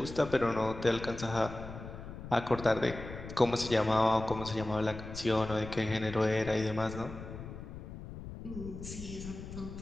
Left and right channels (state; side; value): noise; left; rumble, 11 dB below the sound